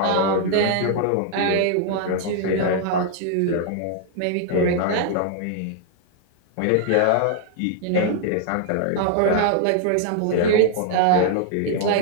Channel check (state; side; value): different; both; correlation 0.00